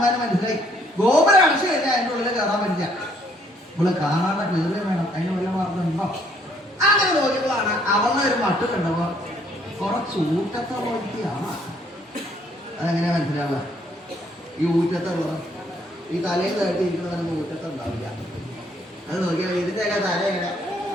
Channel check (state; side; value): normal; both; correlation 0.66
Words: മനസ്സിലായി. ഗോപുരം അടച്ചു കഴിഞ്ഞാൽ അതിൻ്റെ ഉള്ളിൽ കയറാൻ പറ്റില്ല. ഇവള് കാണാതെ കയറുകയും വേണം. അതിന് വല്ല മാർഗമുണ്ടോ? അങ്ങനെ നോക്കിയപ്പോഴാണ് അവളുടെ ഒരു മട്ട് കണ്ടപ്പോ കുറച്ച് ഊറ്റത്തെ പോലെയാണ്. അതെങ്ങനെയാ മനസ്സിലാവുക? ഈ ഊറ്റത്തെ ഉള്ളത് ഈ തലയിൽ തട്ടിയിരിക്കുന്നതൊന്നും ഊറ്റത്തെ ഉണ്ടാവില്ല. അത് നോക്കിയാൽ ഇതിൻ്റെയൊക്കെ തല എങ്ങനെ